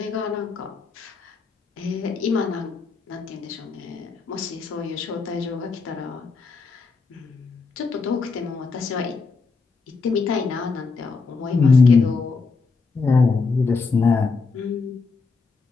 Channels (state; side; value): quieter; right; 4.5 dB